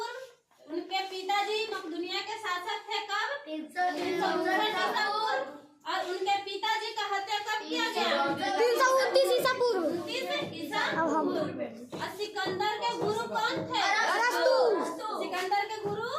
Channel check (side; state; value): both; identical; correlation 1.00